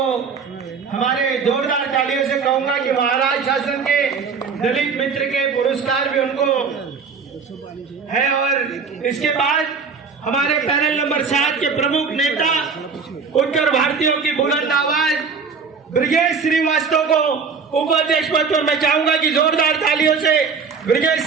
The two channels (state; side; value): quieter; left; 5.5 dB